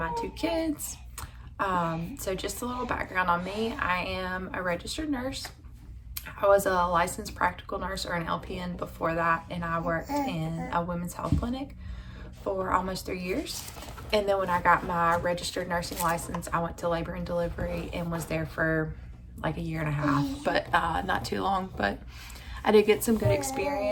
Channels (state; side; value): identical; both; correlation 1.00